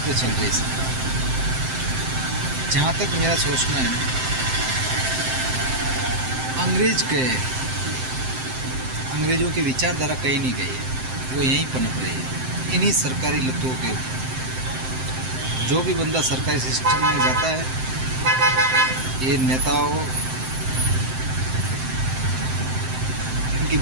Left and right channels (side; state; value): left; late; 7.7 ms